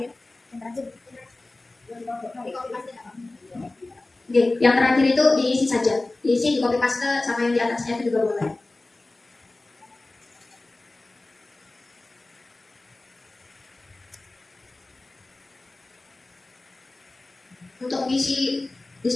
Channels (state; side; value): quieter; right; 3.0 dB